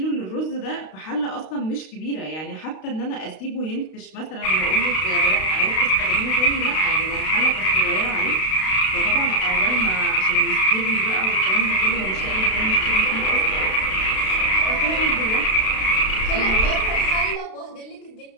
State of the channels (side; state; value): right; late; 32 ms